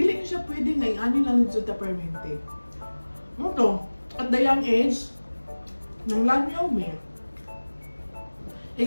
niya siya pwede nga, ani lang nito ta permente. Ano to? At the young age, nang langyaw me.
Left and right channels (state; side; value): inverted; both; correlation -1.00